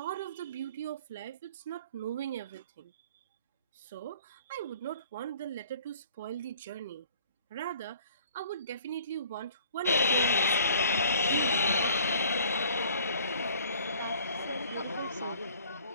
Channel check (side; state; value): both; inverted; correlation -0.52